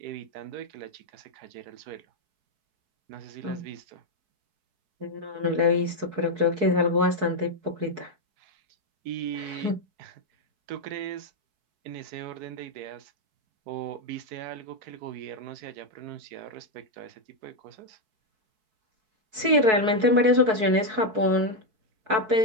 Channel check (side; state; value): left; late; 4.6 ms